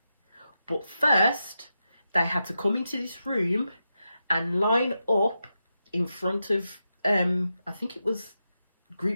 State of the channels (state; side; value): inverted; both; correlation -0.88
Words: But first, they had to come into this room and line up in front of, I think it was